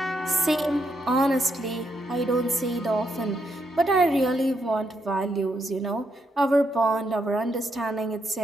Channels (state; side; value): normal; both; correlation 0.79